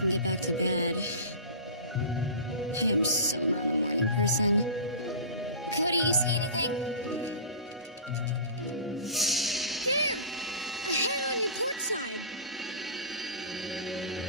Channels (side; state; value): both; inverted; correlation -0.34